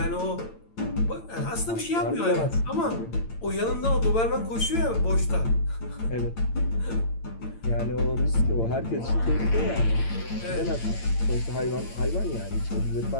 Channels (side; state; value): right; late; 8.9 ms